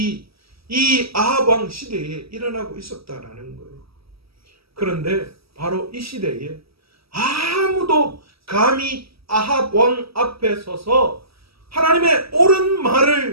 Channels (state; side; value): late; left; 0.76 ms